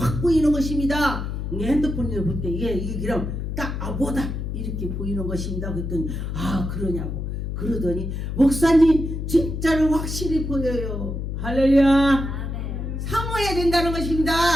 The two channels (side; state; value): left; noise; hum, 4 dB below the sound